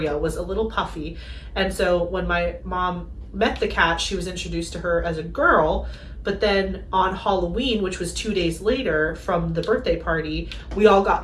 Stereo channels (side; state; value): both; identical; correlation 1.00